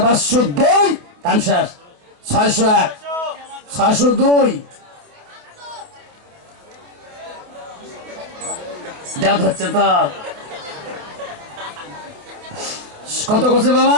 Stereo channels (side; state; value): left; late; 28 ms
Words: 2, কাম শেষ। 600 এক, 602 দেওয়া হচ্ছে তো। কত করছে বাবা?